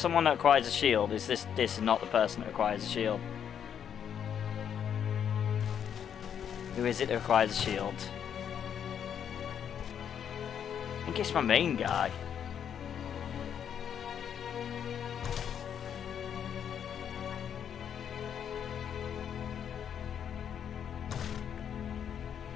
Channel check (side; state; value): right; quieter; 8.6 dB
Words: that acquires a shield. Is this is not the person that acquires a shield? Who is it that acquires a shield? I think it's my main guy.